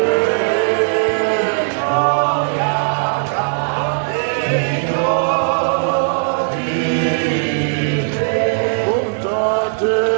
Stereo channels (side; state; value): left; silent; digital silence